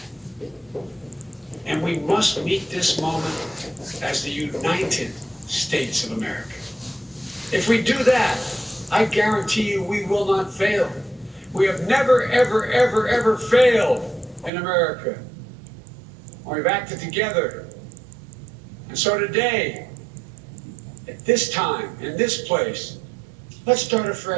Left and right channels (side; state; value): left; drops out; at 14.5 s